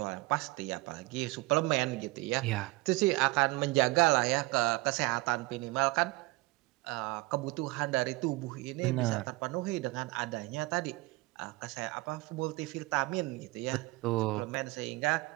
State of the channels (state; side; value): quieter; left; 22.2 dB